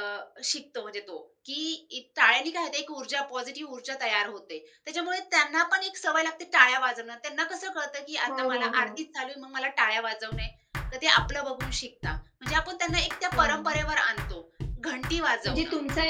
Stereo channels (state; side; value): identical; both; correlation 1.00